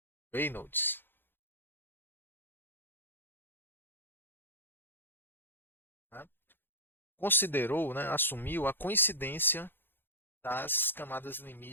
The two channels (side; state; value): right; late; 0.10 ms